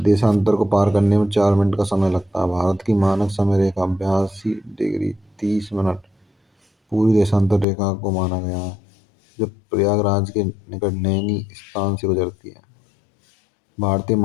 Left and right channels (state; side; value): drops out; right; at 7.7 s